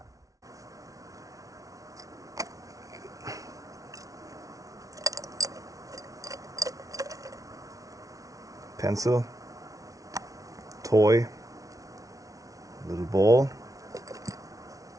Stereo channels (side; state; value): left; late; 0.17 ms